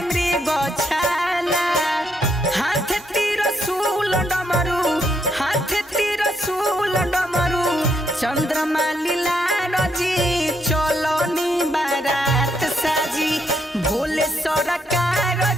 मृग छाला। हाथ त्रिशूल डमरू हाथ त्रिशूल डमरू चंद्रमा लीला रजी चलनी बारात साजी भोले सरकार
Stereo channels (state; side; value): normal; both; correlation 0.76